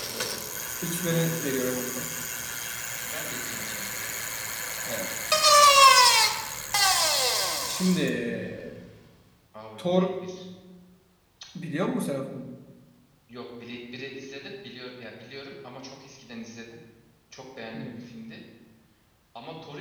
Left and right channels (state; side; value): identical; both; correlation 1.00